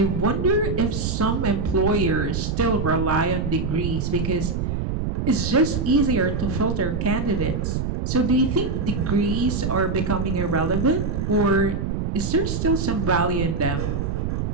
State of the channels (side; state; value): right; noise; rumble, 1 dB below the sound